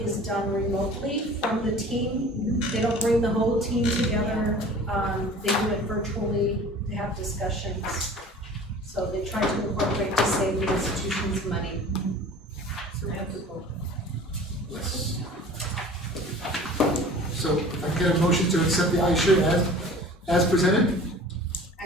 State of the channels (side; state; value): both; normal; correlation 0.44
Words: done remotely from the team. They don't bring the whole team together. They do it virtually, they have discussions. So they try to incorporate to save the institutions money. Yes. So if I can get a motion to accept the iShirt as presented?